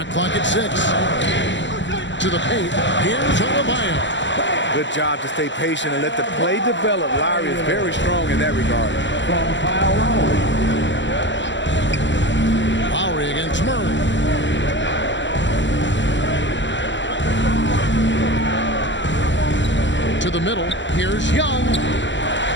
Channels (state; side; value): late; right; 0.54 ms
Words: clock at 6. To the paint. Here's Adebayo. Good job to stay patient and let the play develop. Lowry is very strong in that regard. From Kyle Lowry. Lowry against Murray. To the middle. Here's Young.